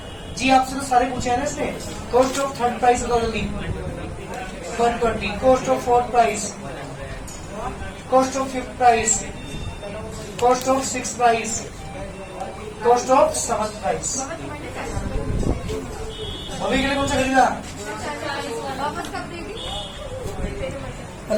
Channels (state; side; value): identical; both; correlation 1.00